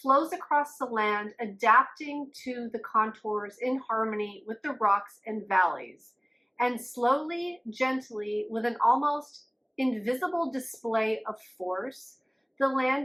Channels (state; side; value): identical; both; correlation 1.00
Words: across the land, adapting to the contours in harmony with the rocks and valleys. And slowly, gently, with an almost invisible display of force, the